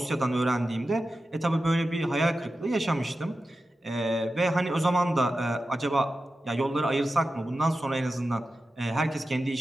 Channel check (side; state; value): both; normal; correlation 0.92